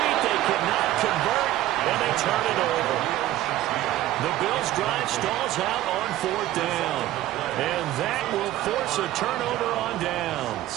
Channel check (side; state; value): left; quieter; 14.4 dB